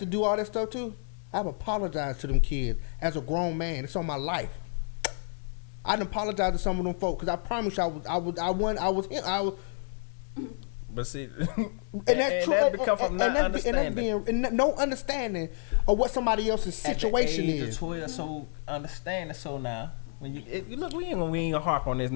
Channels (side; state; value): right; silent; digital silence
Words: to do all that stuff to. I've apologized to them kids as a grown man. It's on my life. I didn't apologize to some of them folks because I promise you I was. But see, and that become from not understanding. No understanding or what somebody else's at the situation age is. of 12. So understand it. So now, when you look, we ain't gonna harp on this